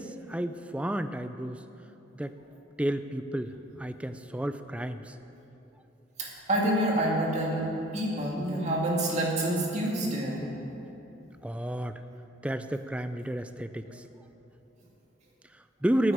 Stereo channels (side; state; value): both; normal; correlation 0.59